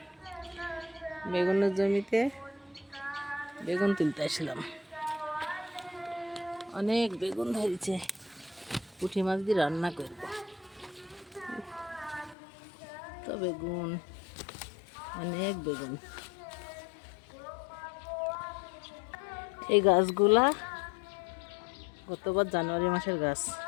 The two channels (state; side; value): drops out; right; at 12.4 s